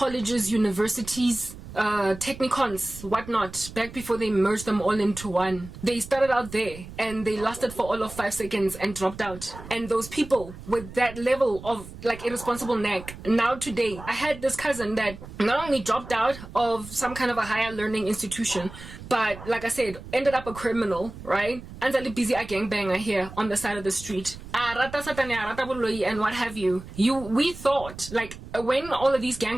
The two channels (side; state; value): right; noise; rumble, 14 dB below the sound